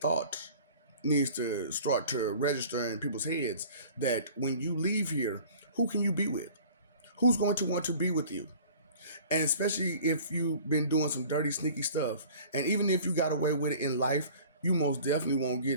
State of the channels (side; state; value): both; inverted; correlation -0.47